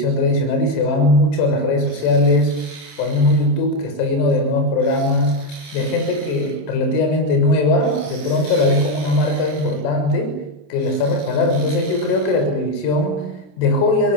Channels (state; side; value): late; right; 27 ms